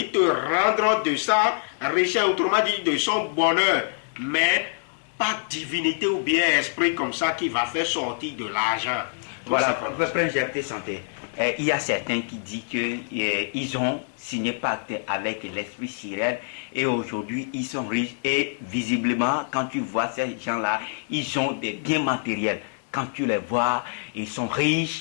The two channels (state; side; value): silent; right; 62 dB below the other